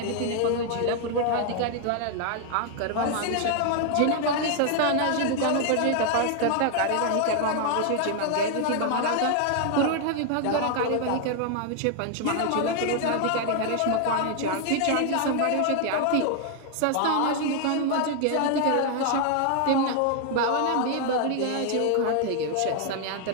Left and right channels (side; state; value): both; different; correlation 0.00